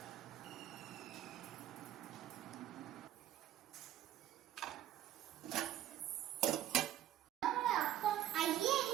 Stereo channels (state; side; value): quieter; left; 12.3 dB